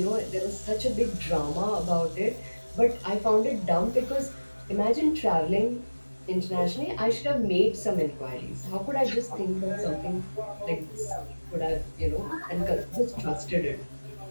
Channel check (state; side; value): inverted; both; correlation -1.00